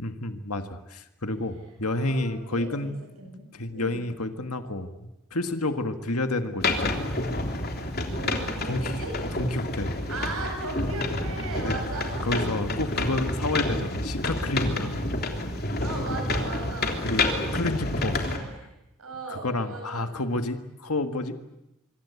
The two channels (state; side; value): normal; both; correlation 0.42